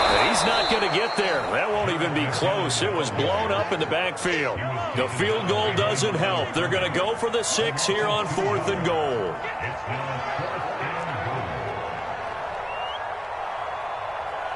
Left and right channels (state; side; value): identical; both; correlation 1.00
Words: He's not going to get there. That won't even be close. It was blown up in the backfield. The field goal doesn't help. They're going to go for the 6 here on 4th and goal.